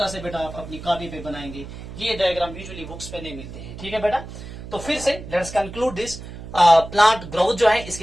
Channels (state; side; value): noise; right; hum, 12 dB below the sound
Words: से बेटा आप अपनी कॉपी पे बनाएंगे, ये डायग्राम यूजुअली बुक्स पे नहीं मिलते हैं, ठीक है बेटा। तो फिर से let's conclude this, plant growth जो है